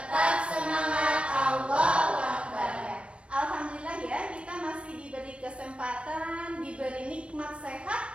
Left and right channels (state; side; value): late; left; 0.059 ms